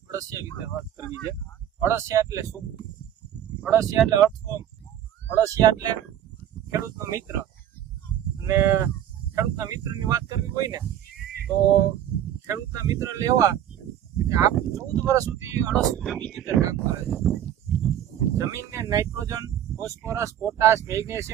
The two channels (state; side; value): quieter; left; 10.8 dB